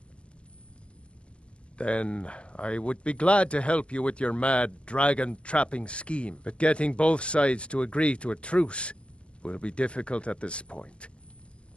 Then I would be glad to help you with your mad dragon-trapping scheme, but getting both sides to agree to a truce will be difficult at this point.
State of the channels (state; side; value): late; right; 0.059 ms